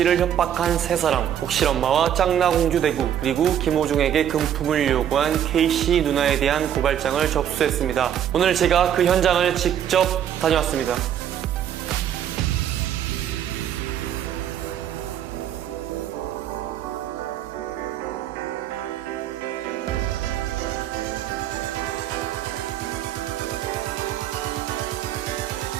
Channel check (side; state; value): left; quieter; 10.0 dB